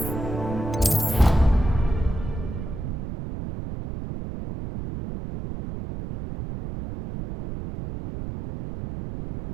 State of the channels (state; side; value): noise; right; rumble, 7 dB below the sound